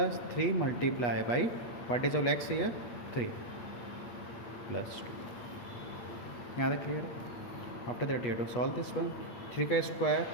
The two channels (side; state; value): right; late; 8.3 ms